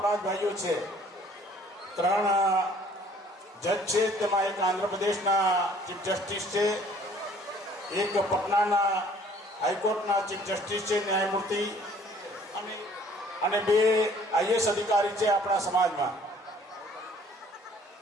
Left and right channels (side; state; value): both; normal; correlation 0.56